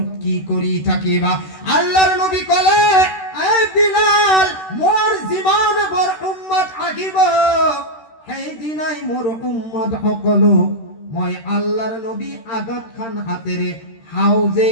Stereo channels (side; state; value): right; late; 13 ms